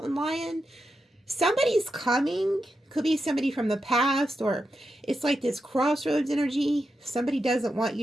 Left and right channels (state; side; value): normal; both; correlation 0.87